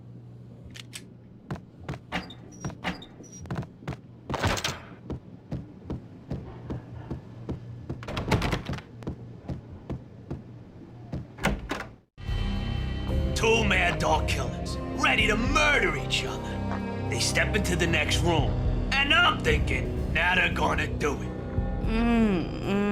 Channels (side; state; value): both; identical; correlation 1.00